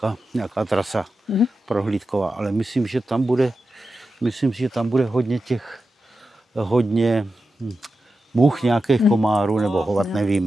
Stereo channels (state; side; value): normal; both; correlation 0.91